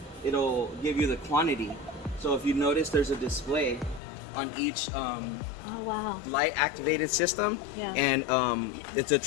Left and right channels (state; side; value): drops out; right; at 4.0 s